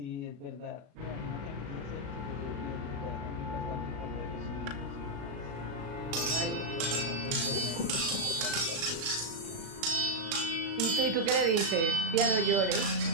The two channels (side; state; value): left; late; 36 ms